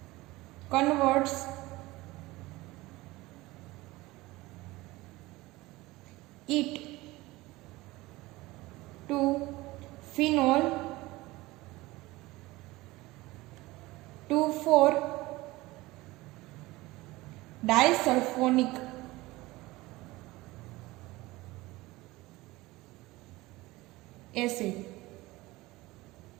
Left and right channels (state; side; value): quieter; left; 19.9 dB